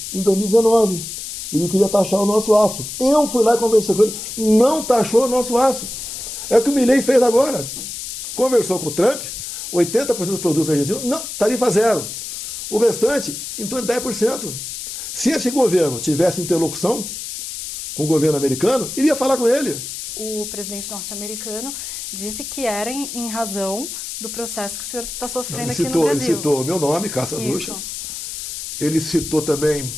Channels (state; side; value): noise; left; hiss, 8 dB below the sound